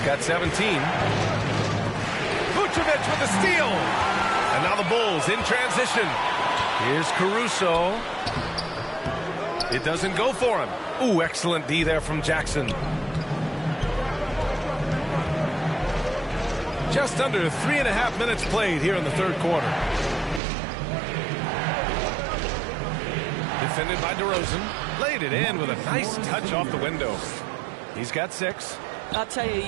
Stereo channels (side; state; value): left; drops out; at 20.4 s